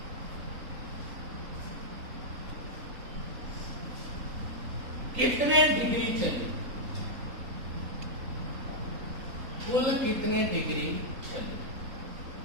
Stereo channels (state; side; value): late; left; 3.8 ms